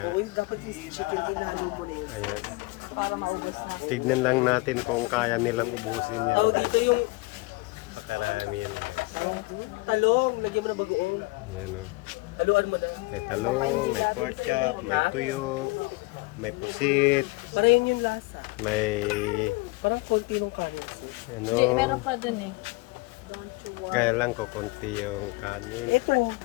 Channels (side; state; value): right; quieter; 23.9 dB